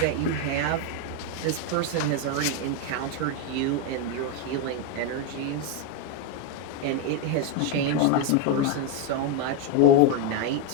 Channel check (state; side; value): different; both; correlation 0.01